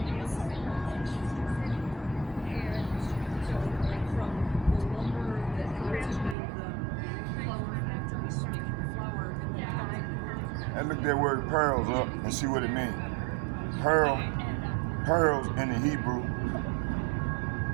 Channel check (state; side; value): drops out; left; at 6.4 s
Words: And look that word pearls up and see what it means. Pearls in the Hebrew.